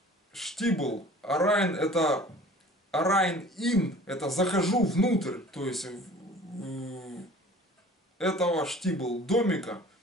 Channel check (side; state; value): both; normal; correlation 0.47